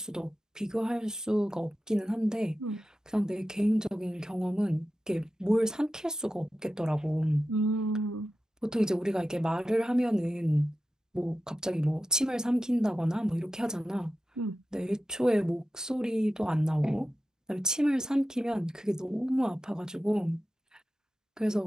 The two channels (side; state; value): both; normal; correlation 0.92